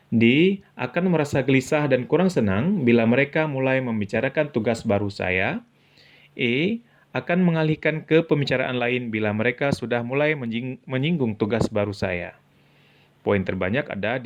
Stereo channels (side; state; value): both; identical; correlation 1.00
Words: D. Akan merasa gelisah dan kurang senang bila mereka mulai membicarakan tugas baru saya. E. Akan mengalihkan ke pembicaraan lain bila mereka sudah mulai menyinggung tugas baru saya. Poin terbanyak ada